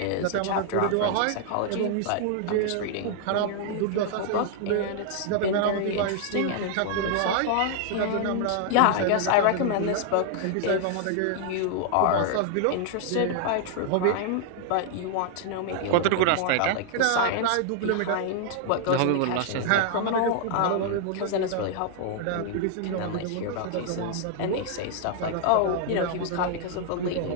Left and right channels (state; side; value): different; both; correlation 0.00